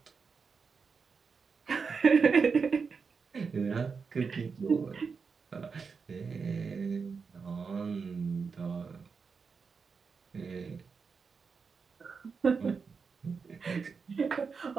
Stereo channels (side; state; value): left; quieter; 5.3 dB